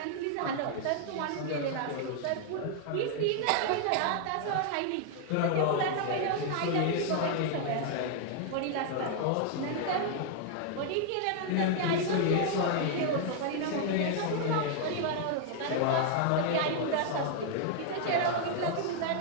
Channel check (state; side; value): different; both; correlation 0.00